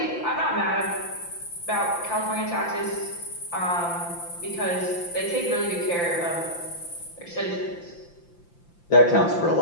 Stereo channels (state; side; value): late; right; 5.8 ms